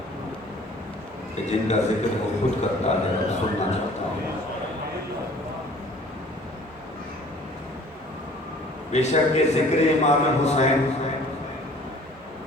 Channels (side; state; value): both; normal; correlation 0.51